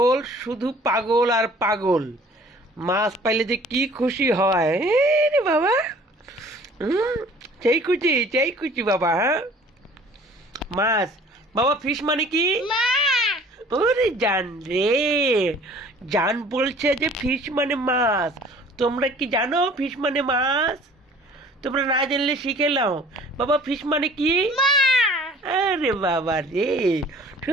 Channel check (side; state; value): both; normal; correlation 0.51